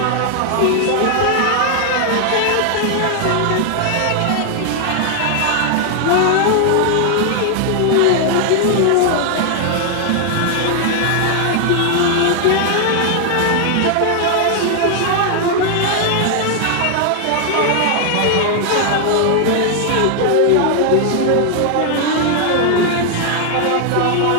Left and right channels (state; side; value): different; both; correlation 0.00